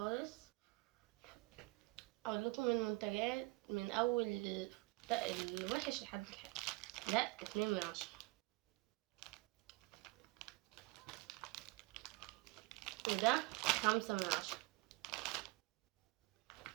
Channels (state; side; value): quieter; left; 23.2 dB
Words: اقول لكم المنتجات من اول الوحش لحد الحلو. ده 2/10. وده 5/10.